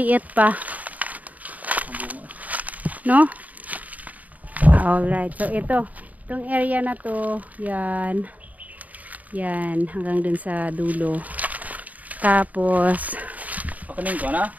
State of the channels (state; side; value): late; left; 0.074 ms